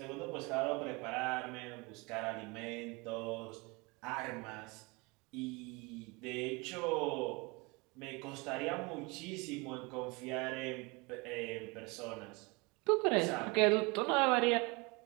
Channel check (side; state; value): left; quieter; 27.6 dB